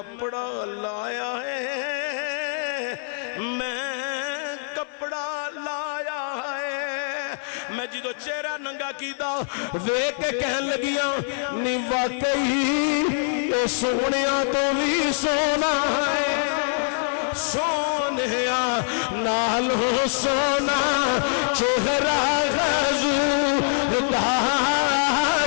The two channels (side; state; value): right; silent; digital silence